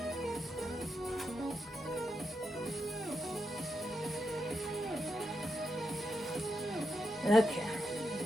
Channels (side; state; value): both; normal; correlation 0.85